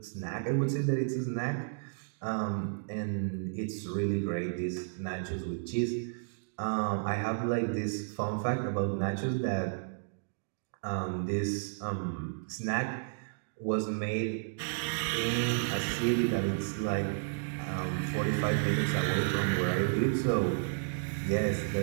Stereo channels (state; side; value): silent; left; digital silence